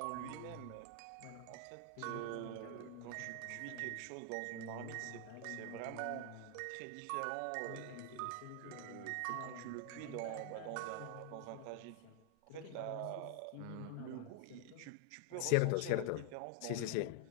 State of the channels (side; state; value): both; different; correlation 0.00